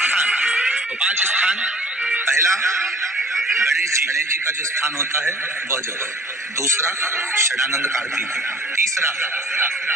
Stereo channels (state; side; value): normal; both; correlation 0.51